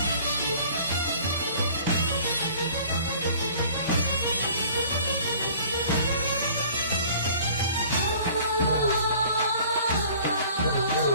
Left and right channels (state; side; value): inverted; both; correlation -0.50